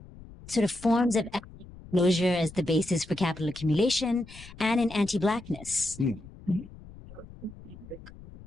sort of forms of ethnic closure as the basis for capital accumulation and in anti-Blackness.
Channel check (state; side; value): noise; left; rumble, 18 dB below the sound